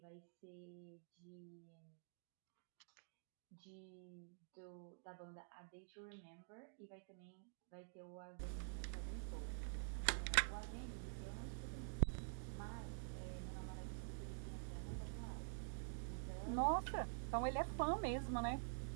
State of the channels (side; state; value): left; silent; digital silence